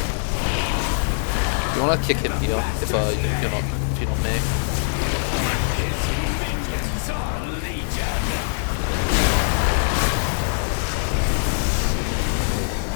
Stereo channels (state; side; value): silent; right; digital silence